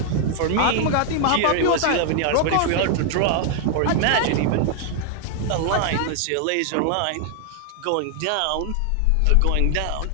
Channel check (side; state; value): both; different; correlation 0.00